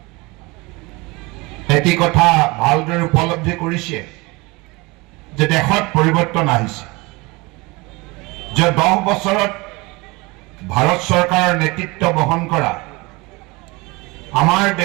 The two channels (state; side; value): quieter; left; 24.6 dB